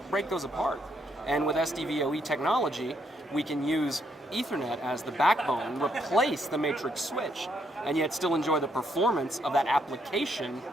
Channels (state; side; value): normal; both; correlation 0.74